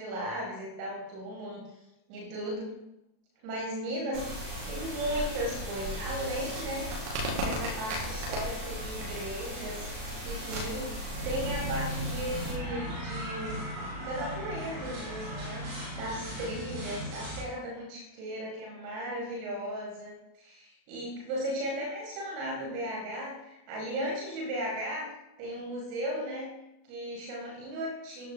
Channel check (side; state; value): left; late; 37 ms